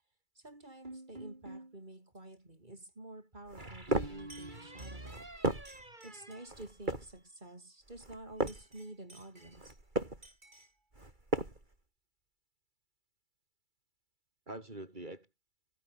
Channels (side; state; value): left; late; 2.3 ms